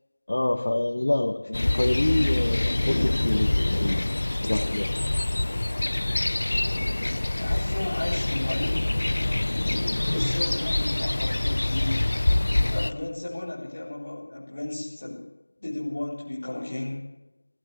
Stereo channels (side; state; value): both; inverted; correlation -1.00